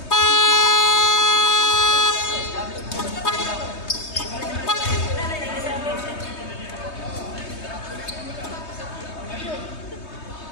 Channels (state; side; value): late; right; 3.2 ms